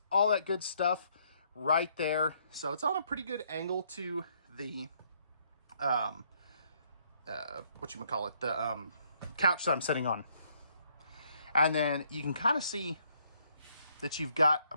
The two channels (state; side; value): inverted; both; correlation -0.69